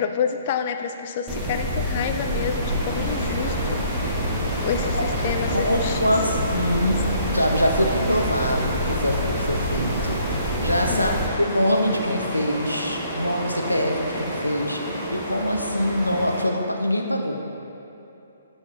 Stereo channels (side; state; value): both; inverted; correlation -0.65